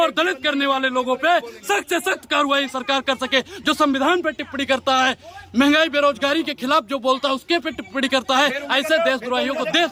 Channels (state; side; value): identical; both; correlation 1.00